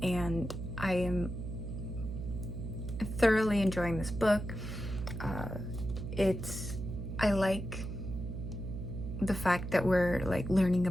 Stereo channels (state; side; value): noise; right; hum, 6 dB below the sound